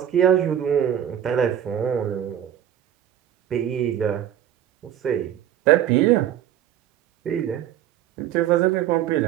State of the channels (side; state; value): left; quieter; 10.7 dB